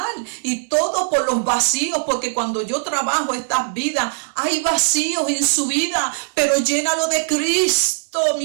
y todo por los vacíos, porque cuando yo trabajo estas vidas, hay vacíos en su vida, pero llénalo de Cristo,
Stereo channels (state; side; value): silent; left; digital silence